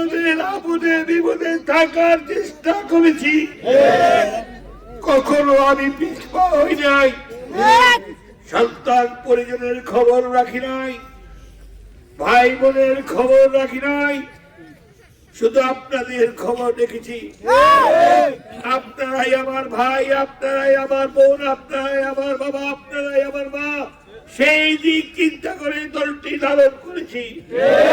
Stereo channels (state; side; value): identical; both; correlation 1.00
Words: আপদে বিপদে থাকার চেষ্টা করেছি। কখনো আমি পিছপা হই নাই, সন্তান পরিজনের খবর রাখি নাই, ভাই বোনের খবর রাখি নাই, শুধু আপনাদের খবর রেখেছি। আপনারাই আমার ভাই, আপনারাই আমার বোন, আপনারাই আমার বাবা, আপনারাই আমার মা, সেই দিক চিন্তা করে দলটি লালন করেছি।